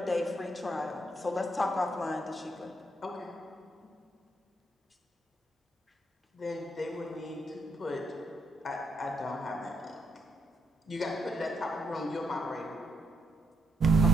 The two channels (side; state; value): both; normal; correlation 0.77